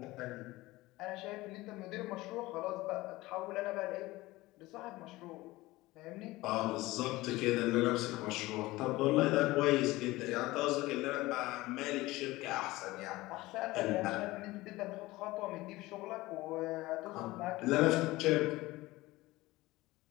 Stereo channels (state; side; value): quieter; right; 19.3 dB